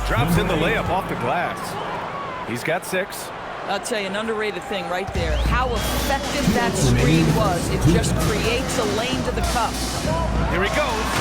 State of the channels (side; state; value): both; identical; correlation 1.00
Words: drops in the layup off the glass. He's got 6. I'll tell you, an underrated thing right there. How effective that screen was. It just creates a lane to the cup. Here he goes.